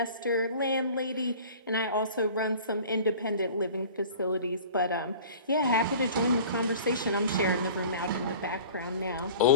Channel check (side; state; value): both; inverted; correlation -0.43